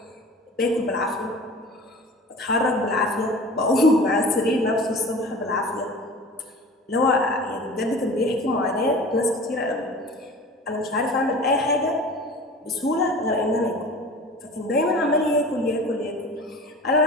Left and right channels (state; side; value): normal; both; correlation 0.40